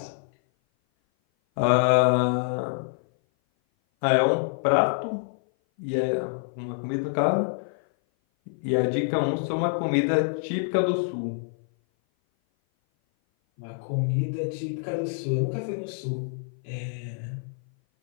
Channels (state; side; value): silent; right; 57 dB below the other